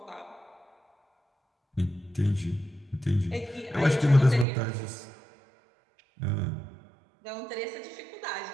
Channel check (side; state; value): left; drops out; at 4.5 s